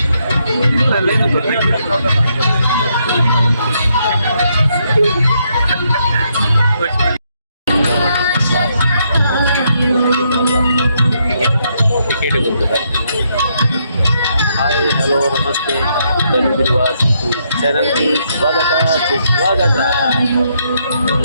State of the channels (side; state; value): both; inverted; correlation -0.76